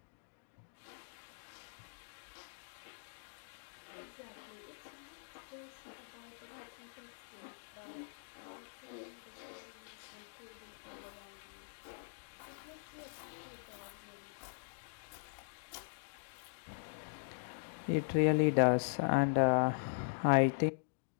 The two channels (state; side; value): silent; right; digital silence